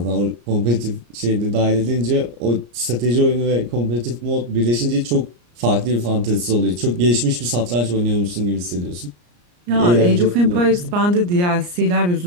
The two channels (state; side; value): late; left; 34 ms